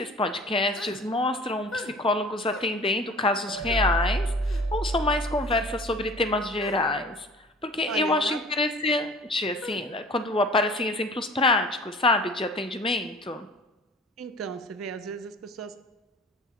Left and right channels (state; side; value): normal; both; correlation 0.45